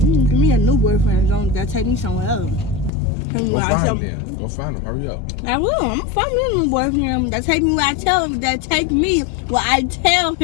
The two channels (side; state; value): right; drops out; at 2.9 s